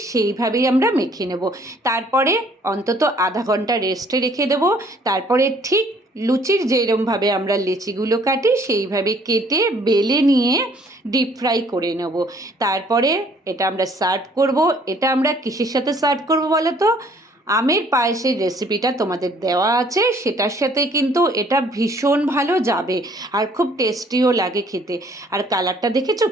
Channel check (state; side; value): normal; both; correlation 0.60